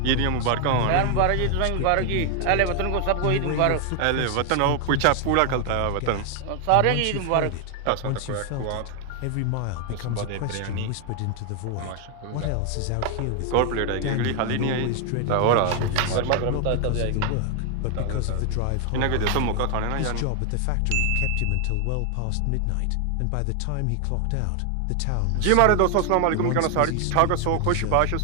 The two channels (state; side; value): different; both; correlation 0.00